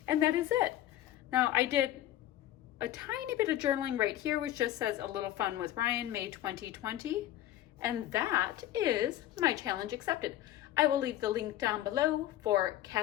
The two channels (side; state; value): right; quieter; 13.2 dB